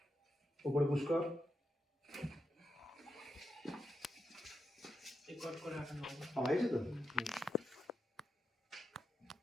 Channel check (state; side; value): normal; both; correlation 0.86